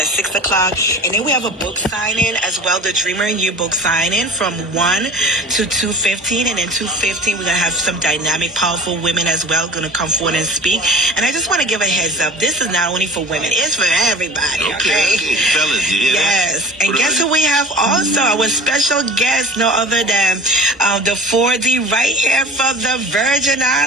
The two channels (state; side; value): normal; both; correlation 0.40